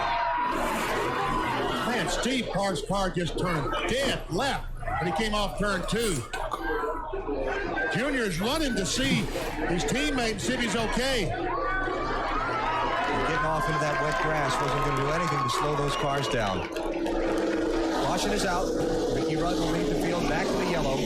Man, Steve Park's car just turned dead left when he came off turn 2. Junior's running to see his teammate and see if he's okay. Getting off into that wet grass wasn't going to do anything to slow those cars down. Caution is out. Ricky Rudd will leave the field back to the yellow.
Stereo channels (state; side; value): identical; both; correlation 1.00